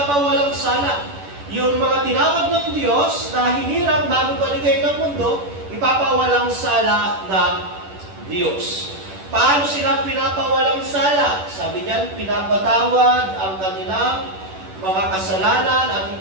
sala. Yung mga tinawag ng Diyos na hinirang bago paligay ng mundo, ipapawalang sala ng Diyos. Paano sila pinapawalang sala? Sabi niyan, pinapatawad ang kanilang mga kasalanan at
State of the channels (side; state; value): left; late; 10 ms